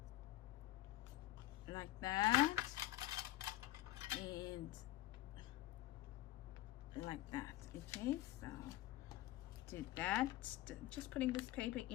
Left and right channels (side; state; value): right; quieter; 15.4 dB